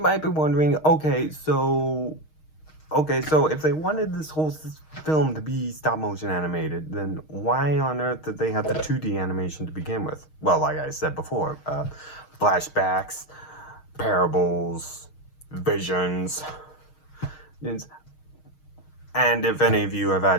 might be wondering, okay, so if they wanted this whole film to be stop motion animated, then why on earth did they have the 2D animation to begin with? Well, like I said before, flashbacks, parables, visions, and if any of you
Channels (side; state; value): right; late; 6.4 ms